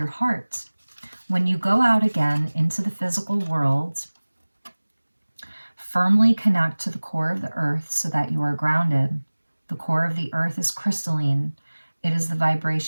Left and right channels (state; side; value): inverted; both; correlation -1.00